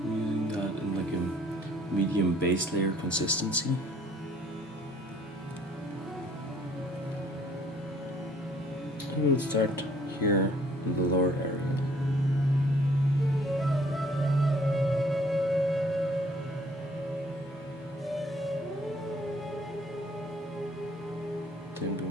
using that in like a medium base layer consistency. We'll start here in the lower area. Then we'll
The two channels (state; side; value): normal; both; correlation 0.59